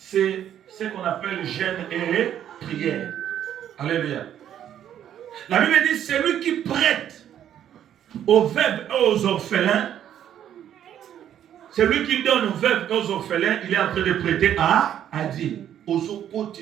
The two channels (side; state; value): left; quieter; 10.3 dB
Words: ce qu'on appelle jeûne et prière. Alléluia. La Bible dit, c'est lui qui prête aux veuves et aux orphelins. C'est lui qui donne aux veuves et aux orphelins. Il est en train de prêter à Dieu.